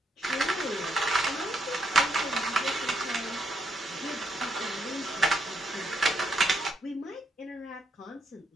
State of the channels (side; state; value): both; normal; correlation 0.75